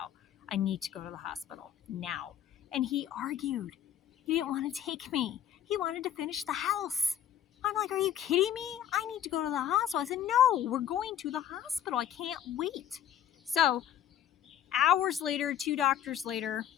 I need to go to the hospital now. And he argued. He didn't want to take me. He wanted to finish the house. I'm like, are you kidding me? I need to go to the hospital. I said, no, we're going to the hospital. I can't wait. So hours later, 2 doctors later,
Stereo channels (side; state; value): right; quieter; 10.3 dB